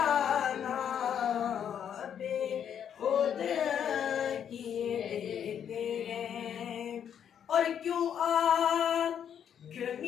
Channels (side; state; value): right; quieter; 8.7 dB